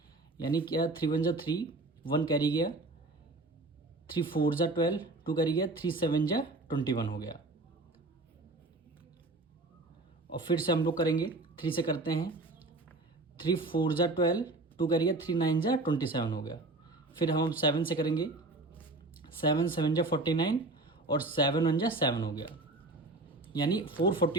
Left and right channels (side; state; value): left; quieter; 3.0 dB